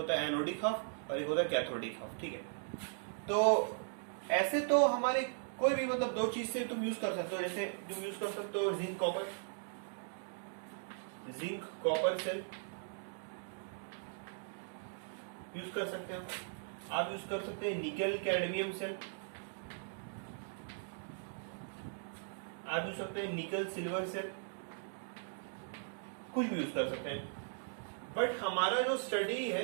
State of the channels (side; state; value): left; silent; digital silence